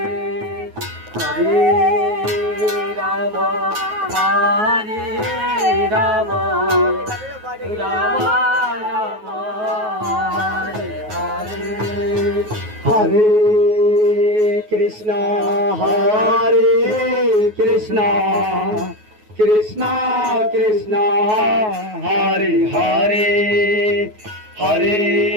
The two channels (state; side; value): late; left; 9.4 ms